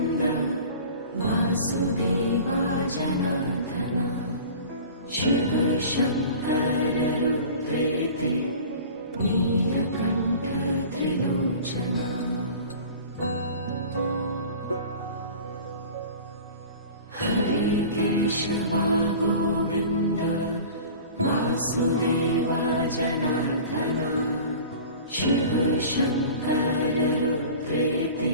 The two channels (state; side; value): inverted; both; correlation -0.40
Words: Vasudeva जनार्दना Shiv Shankar रुद्रेति Neelkanth Trilochana Hare Keshwa Govind Vasudeva जनार्दना Shiv Shankar रुद्रेति